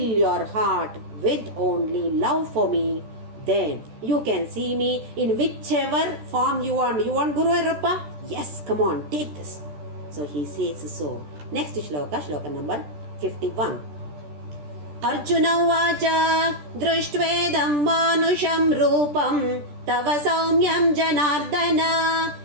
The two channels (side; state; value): left; late; 14 ms